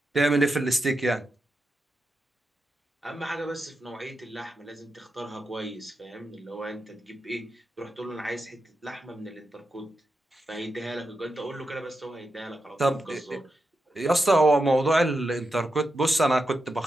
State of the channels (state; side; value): normal; both; correlation 0.88